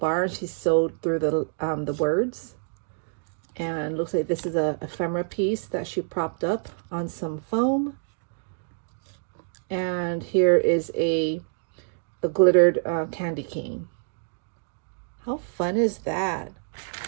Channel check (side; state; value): left; silent; digital silence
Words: She sewed through the words. And looks like this is a ephemera piece that she propped up on some foam. And here is a glittered candy cane. How fun is that?